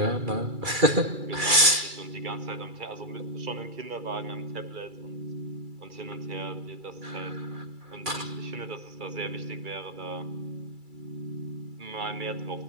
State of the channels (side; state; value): left; late; 2.3 ms